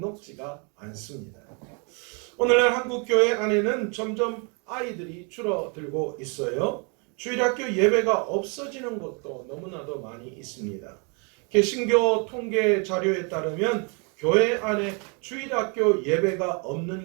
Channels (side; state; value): left; quieter; 35.0 dB